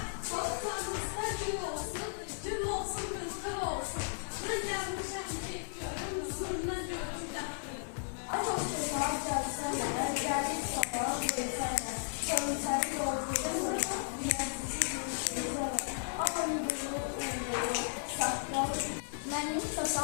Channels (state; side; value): silent; right; digital silence